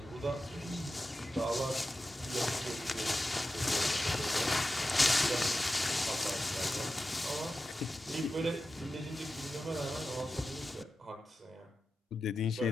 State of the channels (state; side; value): normal; both; correlation 0.93